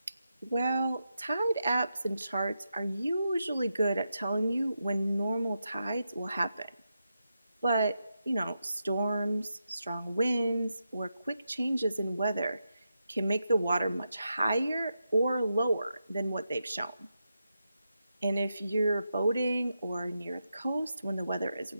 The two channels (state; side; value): inverted; both; correlation -0.87